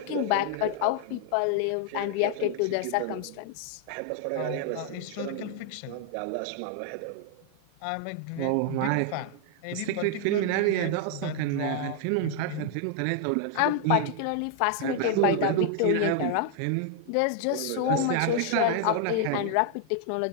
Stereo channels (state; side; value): different; both; correlation 0.00